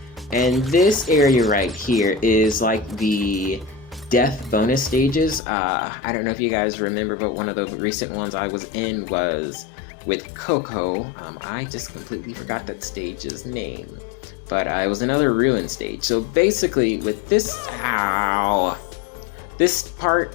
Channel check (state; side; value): drops out; right; at 5.4 s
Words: And this area right here is like the death bonus stages. I don't know if you guys remember, but one of the recent ones I was in was with Coco. I just completely forgot that stage's name. But it was another ruin stage. So basically with this, this